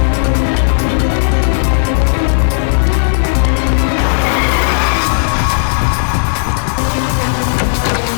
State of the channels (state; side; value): silent; right; digital silence